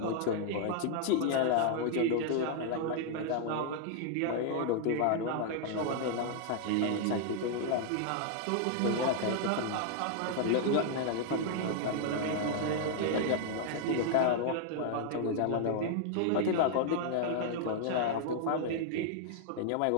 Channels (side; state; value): both; different; correlation -0.01